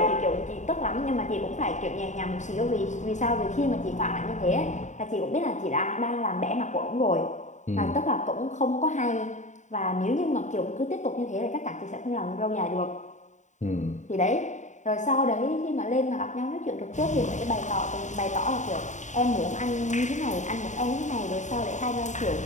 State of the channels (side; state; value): right; late; 0.35 ms